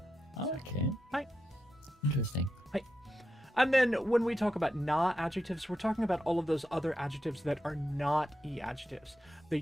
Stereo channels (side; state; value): both; normal; correlation 0.87